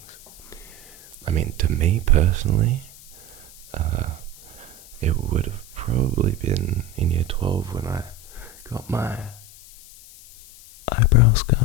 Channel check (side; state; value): left; noise; hiss, 20 dB below the sound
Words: I mean, to me personally, it would have probably been in year 12 when I got my eyebrow